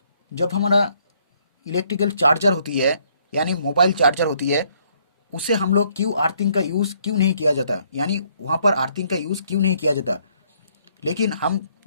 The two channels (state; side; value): inverted; both; correlation -0.68